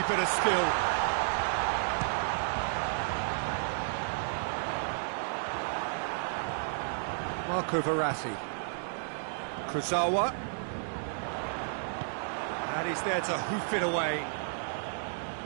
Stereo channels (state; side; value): silent; left; digital silence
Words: bit of skill. Marco Verratti. Kurzawa. And he's there to hoof it away.